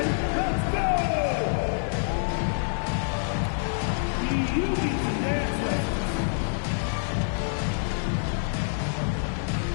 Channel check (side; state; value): right; silent; digital silence